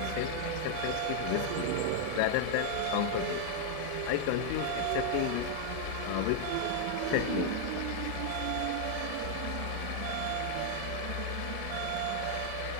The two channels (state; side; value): different; both; correlation 0.00